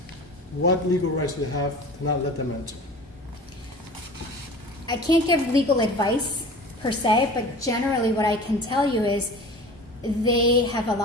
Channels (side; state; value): both; normal; correlation 0.39